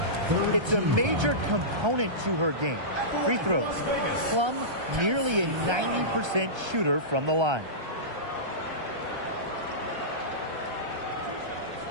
It's a major component to her game. Free throws. Plum, nearly a 90% shooter from the line.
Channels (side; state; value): left; late; 1.3 ms